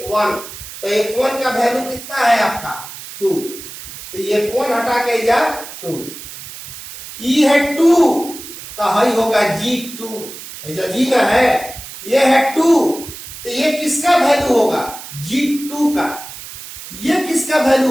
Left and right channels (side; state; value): right; noise; hiss, 13 dB below the sound